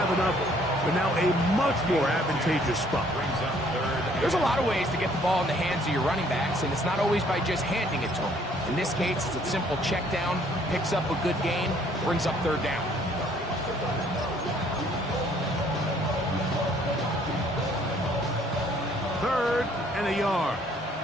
enough, but now a much more advantageous spot. There's a lot of ways to get the ball in the hands of your running backs, and it's not always by just handing it to them. In this case, it's a simple check down, picks up a good gain, brings up 3rd down. Third and a yard.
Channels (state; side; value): normal; both; correlation 0.62